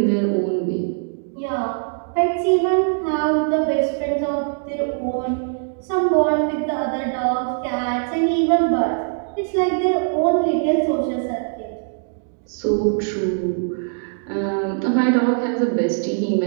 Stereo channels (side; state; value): left; silent; digital silence